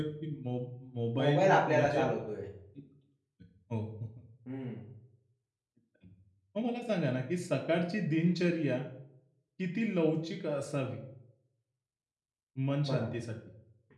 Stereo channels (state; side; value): identical; both; correlation 1.00